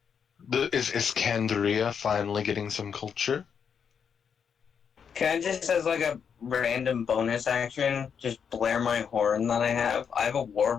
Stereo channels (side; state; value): right; quieter; 7.0 dB